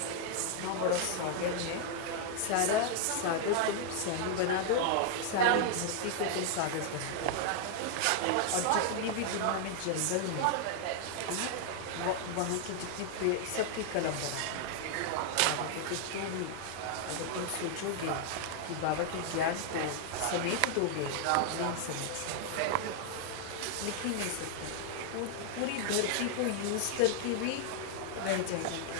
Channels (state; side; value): different; both; correlation 0.00